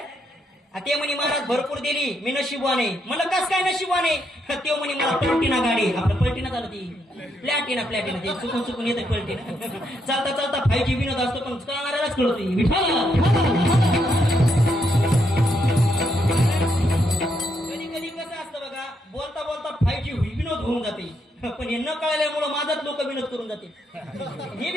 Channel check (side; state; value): both; normal; correlation 0.77